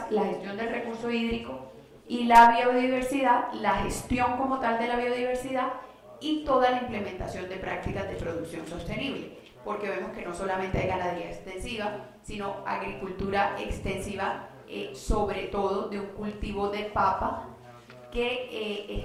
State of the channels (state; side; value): identical; both; correlation 1.00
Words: la gestión del recurso hídrico y la biodiversidad, la gestión como tal de la biodiversidad y toda la implementación de prácticas de producción sostenible, porque vemos que no solamente hay ganadería extensiva, sino agricultura extensiva, sobre todo de un cultivo de papa que